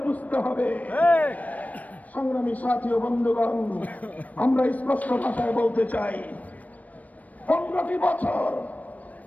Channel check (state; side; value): late; right; 0.072 ms